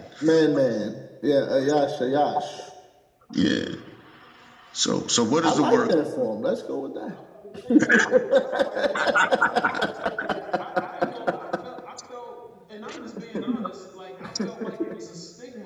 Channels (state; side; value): identical; both; correlation 1.00